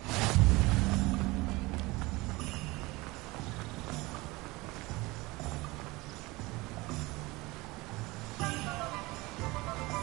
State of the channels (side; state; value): left; quieter; 22.3 dB